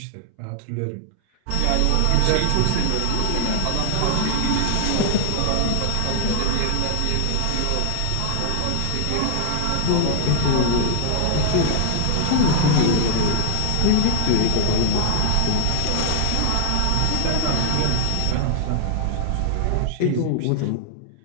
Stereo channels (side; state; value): both; different; correlation 0.00